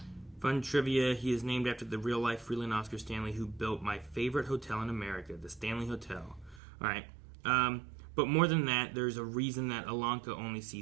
trivia, he is named after the real-life Freeland Oscar Stanley who built my favorite hotel in America, the Stanley Hotel. All right. But more than that, there's a reason that Alanka only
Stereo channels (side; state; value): left; drops out; at 6.6 s